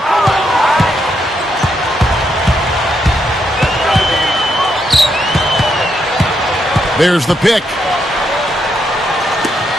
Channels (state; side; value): normal; both; correlation 0.79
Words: There's the pick.